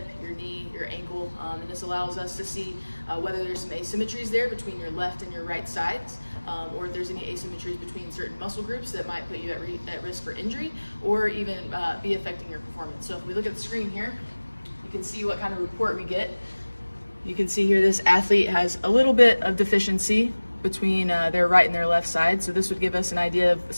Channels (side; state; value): both; inverted; correlation -1.00